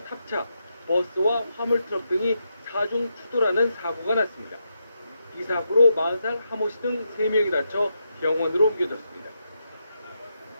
탑차, 버스와 화물트럭 등이 사중 추돌하는 사고가 났습니다. 이 사고로 40살 하모 씨 등 3명이 다쳐 병원으로 옮겨졌습니다.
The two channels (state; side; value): inverted; both; correlation -0.83